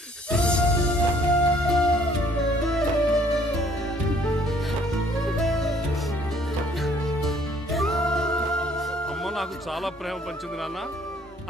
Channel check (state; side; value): normal; both; correlation 0.61